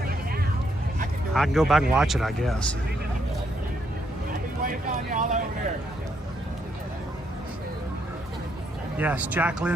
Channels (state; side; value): normal; both; correlation 0.75